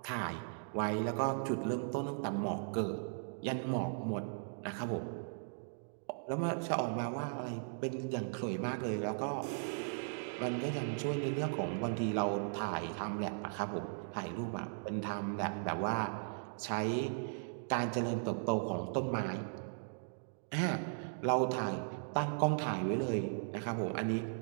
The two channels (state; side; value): silent; left; digital silence